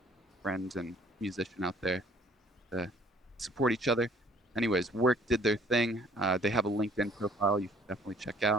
friend and musician out there to support each other. Anyways, work did their thing. They have a LinkedIn profile you should definitely check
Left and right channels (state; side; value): normal; both; correlation 0.58